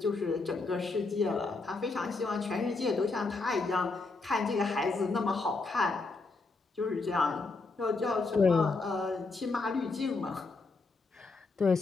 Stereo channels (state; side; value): quieter; right; 3.8 dB